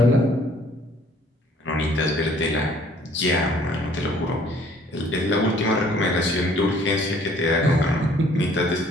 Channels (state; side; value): normal; both; correlation 0.58